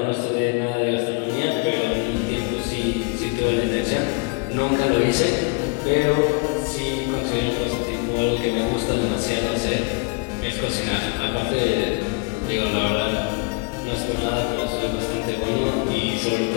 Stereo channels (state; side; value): quieter; right; 33.1 dB